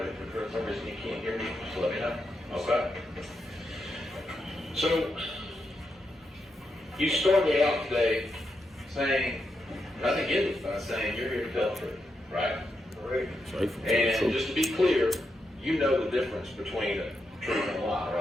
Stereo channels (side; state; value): both; normal; correlation 0.84